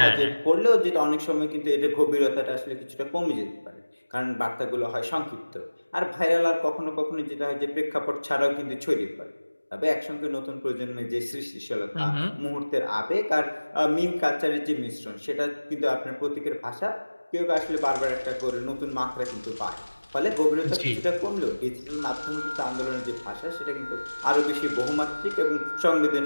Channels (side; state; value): both; inverted; correlation -1.00